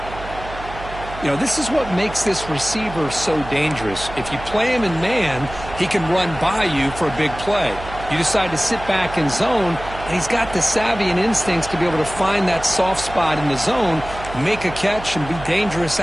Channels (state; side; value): noise; right; hum, 13 dB below the sound